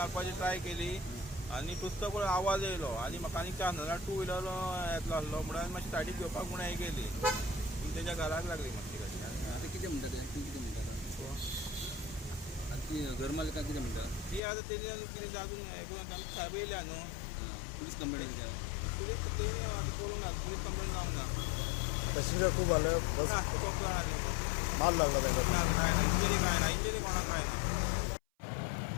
ट्राय केली आनी तुस्त पळय आवाज येयलो आनी म्हाका आनी चान्स नाजाल्यार 2 व्हिलर येतलो आसलो म्हणून हांवें मातशी सायडीक घेवपाक म्हणून हें केली. पूण तेच्या घराक लागली मातशी गाडी. आता कितें म्हणटा ते कितें म्हणटा आतां ती घर मालकां कितें म्हणटा ती आतां तेणी कितें अजून हें करून आमकां साहेब येयल्या न्हू. पुलीस कंप्लेंट केल्या पुलीस तेणी आतां करूंक ना. पुलीस कंप्लेंट जावंक ना. पॅसेंजर खूप आलं बस ना खूब जाण आसले. मार लागला त्यांना ना काय ना इंजरी काय ना. इंजरी कोणाक काय ना.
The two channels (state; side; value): drops out; right; at 14.4 s